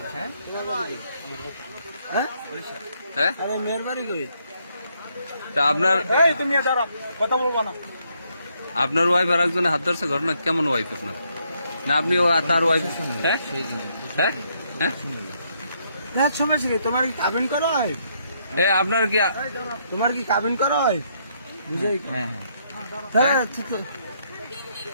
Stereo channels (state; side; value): inverted; both; correlation -0.74